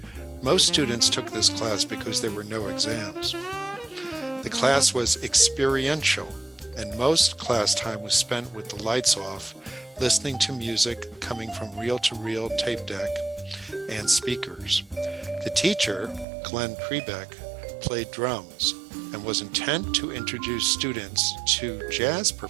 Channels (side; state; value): left; drops out; at 16.2 s